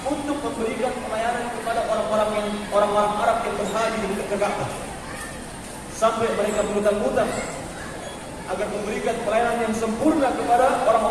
untuk memberikan pelayanan kepada orang-orang Arab yang berhaji di dekat Ka'bah. Sampai mereka berhutang-hutang agar memberikan pelayanan yang sempurna kepada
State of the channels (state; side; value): identical; both; correlation 1.00